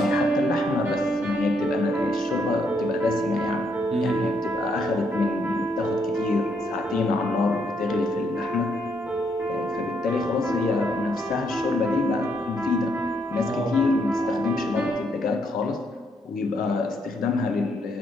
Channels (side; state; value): both; normal; correlation 0.74